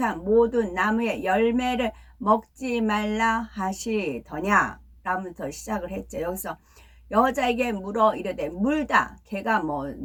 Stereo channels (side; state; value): both; identical; correlation 1.00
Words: 모든 나무의 열매를 먹지 말라 하시더냐 라면서 시작을 했죠. 여기서 여자에게 물어 이르되 물다. 걔가